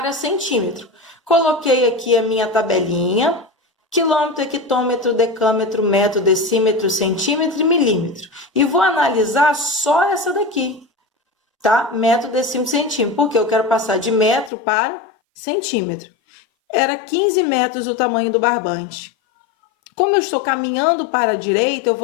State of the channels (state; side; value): drops out; right; at 14.5 s